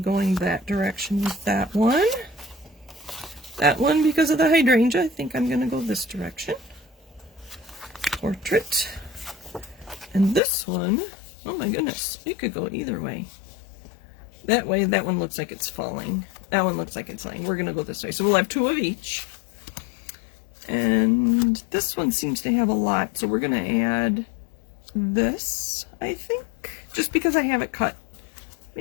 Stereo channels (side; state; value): right; drops out; at 10.4 s